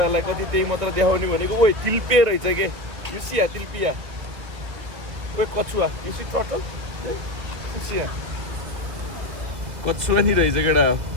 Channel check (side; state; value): left; late; 2.1 ms